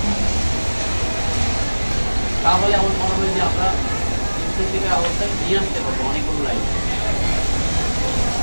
তাহলে আমার মনে হয় যে আমরা স্পেসিফিক অবস্থায় নিয়ে আসতে পারবো অনেকগুলো লাইন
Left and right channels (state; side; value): inverted; both; correlation -1.00